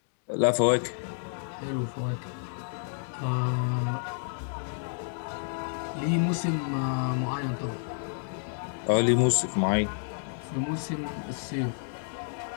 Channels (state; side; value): silent; right; digital silence